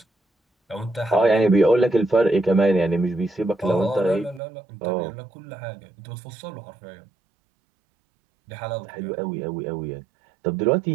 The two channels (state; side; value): drops out; left; at 4.4 s